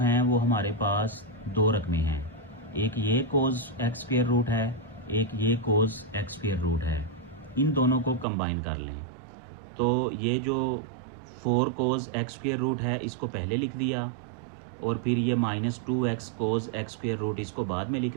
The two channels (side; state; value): left; drops out; at 8.2 s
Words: वो हमारे पास 2 रकमें हैं, एक ये कोस एक्स स्क्वेयर रूट है, एक ये कोस एक्स स्क्वेयर रूट है। इन दोनों को कंबाइन कर लें तो ये जो 4 कोज एक्स स्क्वायर रूट है, इसको पहले लिख दिया, और फिर ये -2x cos x square root इसको बाद में लिख